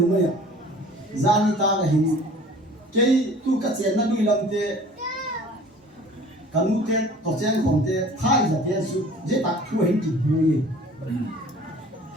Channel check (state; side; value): normal; both; correlation 0.48